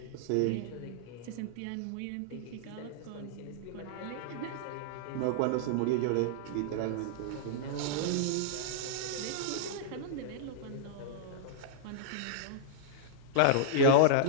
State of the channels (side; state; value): both; different; correlation -0.02